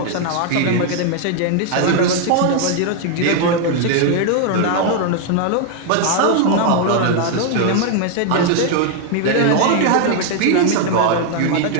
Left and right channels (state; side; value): different; both; correlation 0.00